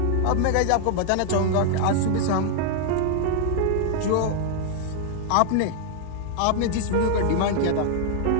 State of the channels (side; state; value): both; different; correlation 0.00